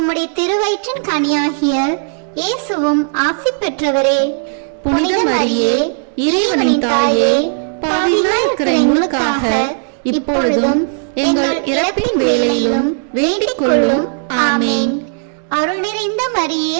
திருவயிற்றின் கனியாகிய இயேசுவும் ஆசி பெற்றவரே. புனித மரியே, இறைவனின் தாயே, பாவிகளாய் இருக்கிற எங்களுக்காக இப்பொழுதும் எங்கள் இறப்பின் வேளையிலும் வேண்டிக் கொள்ளும். ஆமேன். அருள் நிறைந்த மரியே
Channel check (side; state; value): left; silent; digital silence